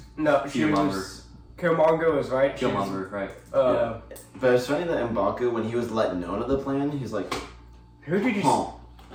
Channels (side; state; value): both; identical; correlation 1.00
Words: Killmonger was right. Killmonger, right. But it's funny that M'Baku, when he was let known of the plan, he's like, "Who did you?"